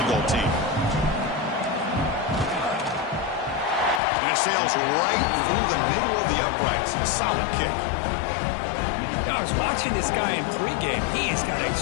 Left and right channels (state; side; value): drops out; right; at 4.0 s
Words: goal team. And it sails right through the middle of the uprights. A solid kick. I was watching this guy in pregame. He has got a